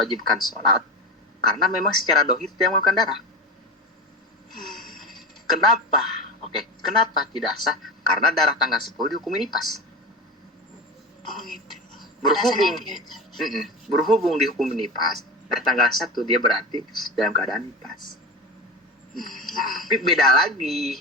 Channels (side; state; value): both; normal; correlation 0.26